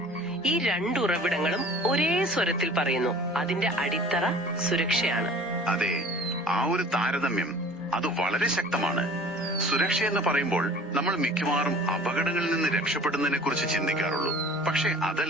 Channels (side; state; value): both; normal; correlation 0.46